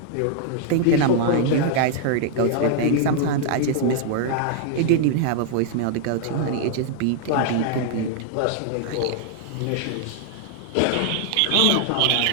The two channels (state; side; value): different; both; correlation -0.01